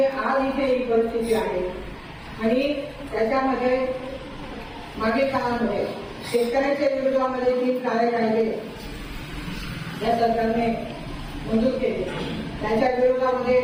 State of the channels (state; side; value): identical; both; correlation 1.00